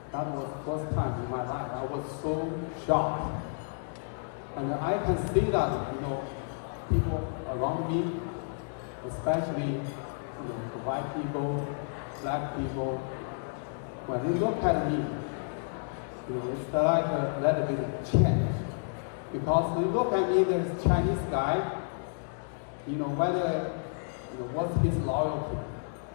That was the first time in my life. I was so shocked. And I can see that, people around me, especially white people, black people, when they look at me, it's like a little bit of change. Because they look at me, this Chinese guy, whether what's his loyalty.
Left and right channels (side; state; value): right; silent; digital silence